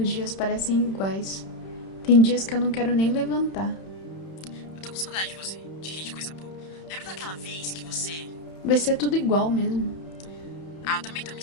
dias parecem iguais. Tem dias que eu não quero nem levantar. Eu tô com saudade de você, de rir de coisa boa. Lembra daquela vez que você... Vai ser tudo igual mesmo. Eu também tô me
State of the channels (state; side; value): late; right; 31 ms